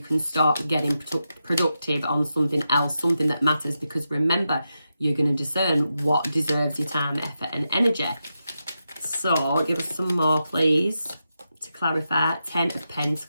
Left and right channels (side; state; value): both; inverted; correlation -0.88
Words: start getting productive on something else, something that matters. Because remember, you're going to discern what deserves your time, effort and energy. So give us some more, please, to clarify. 10 of